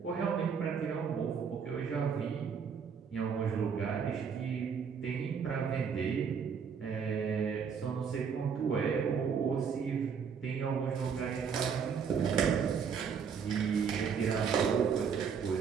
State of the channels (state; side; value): quieter; left; 6.6 dB